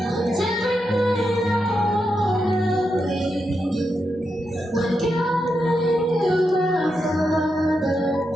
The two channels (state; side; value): normal; both; correlation 0.85